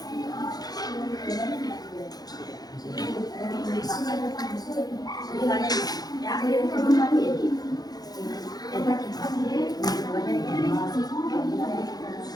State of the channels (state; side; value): late; right; 0.19 ms